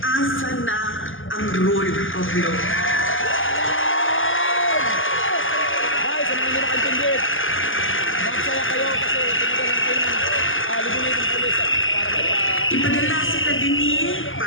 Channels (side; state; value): right; late; 0.58 ms